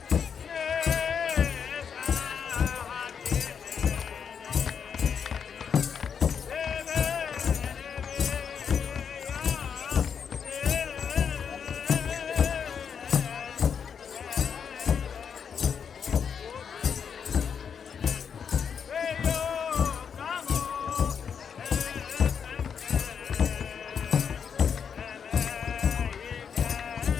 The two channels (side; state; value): right; quieter; 7.0 dB